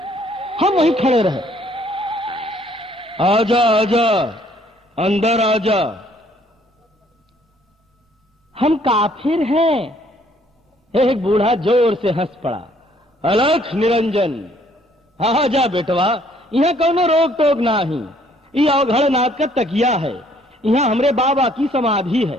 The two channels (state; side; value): normal; both; correlation 0.63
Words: हम वहीं खड़े रहे। आजा आजा अंदर आजा। हम काफिर हैं। एक बूढ़ा जोर से हंस पड़ा। अलख निरंजन, आजा बेटवा, यहाँ कौनो रोक टोक नाही। ये अवघड़ नाथ का तकिया है। यहाँ हमरे बाबा की समाधि है।